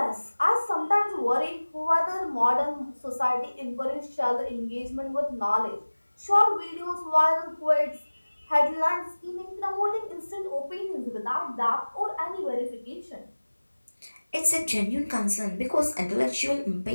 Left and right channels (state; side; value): inverted; both; correlation -1.00